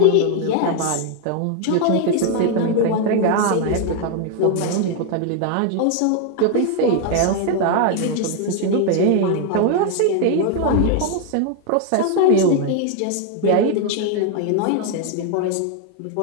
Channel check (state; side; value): different; both; correlation 0.00